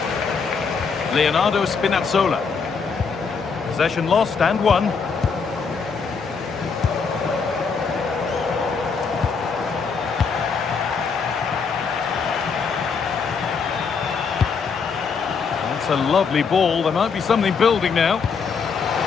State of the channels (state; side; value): quieter; right; 5.5 dB